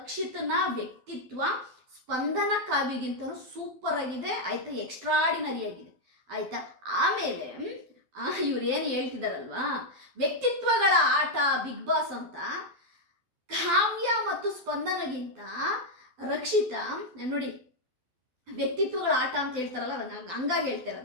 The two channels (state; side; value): late; left; 12 ms